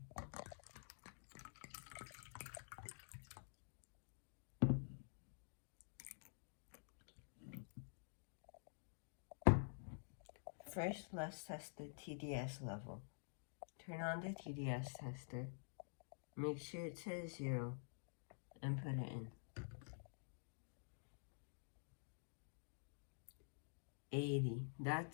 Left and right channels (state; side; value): silent; right; digital silence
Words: First, let's test the TDS level. Turn on the TDS tester. Make sure it says 0 and put it in. 80.